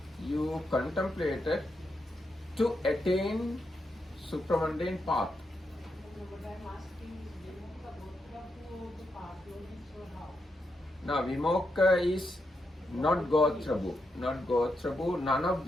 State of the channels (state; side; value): normal; both; correlation 0.83